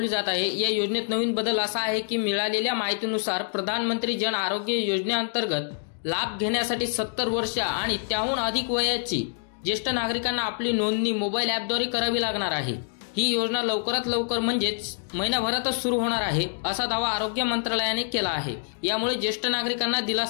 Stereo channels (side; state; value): right; silent; digital silence